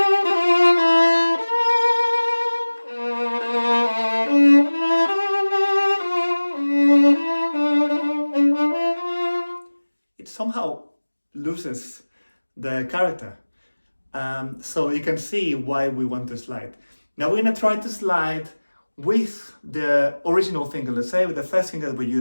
Somehow loses the character. So you can see why we want to slide. Now we're going to try to slide with the original finger, let's say with the first finger that we're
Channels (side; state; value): both; inverted; correlation -1.00